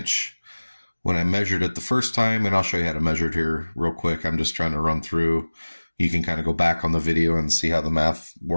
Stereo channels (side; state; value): both; inverted; correlation -1.00